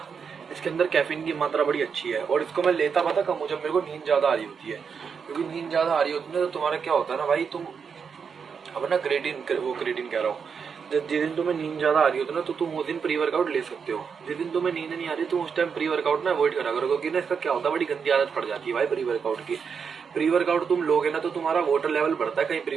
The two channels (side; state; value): left; quieter; 6.3 dB